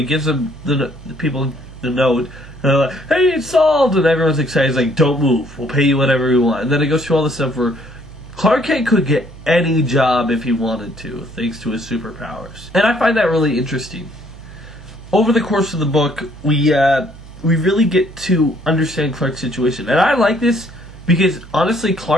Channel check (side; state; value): right; noise; hum, 18 dB below the sound